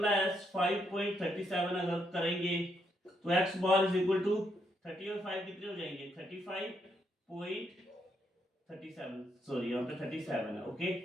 5.37 अगर करेंगे तो x bar is equal to 30 और 5 कितने हो जाएंगे 35.37, सॉरी यहाँ पे 37 है। ओके,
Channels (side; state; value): both; normal; correlation 0.77